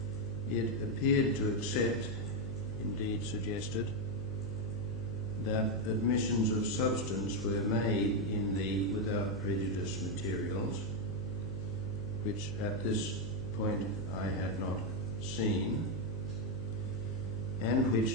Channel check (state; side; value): noise; left; hum, 9 dB below the sound